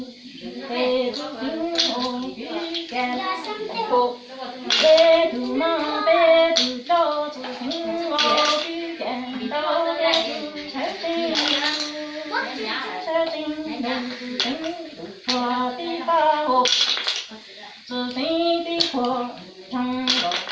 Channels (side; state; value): both; identical; correlation 1.00